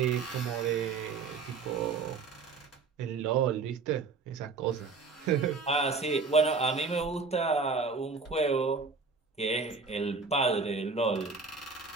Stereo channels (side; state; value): left; quieter; 4.6 dB